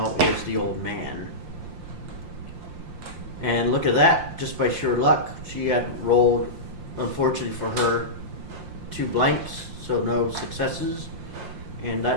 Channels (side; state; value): left; late; 5.7 ms